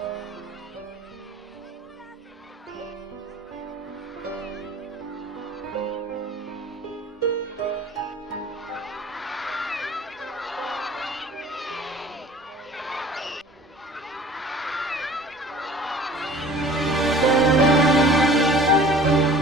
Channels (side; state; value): both; normal; correlation 0.46